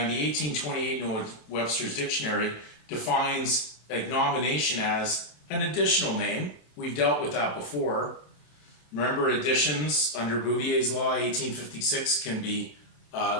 the 1828 Noah Webster's dictionary defines agnomination as an additional name. We've dealt with that before. Remember, additions under Bouvier's law, 1856, can be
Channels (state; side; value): late; right; 27 ms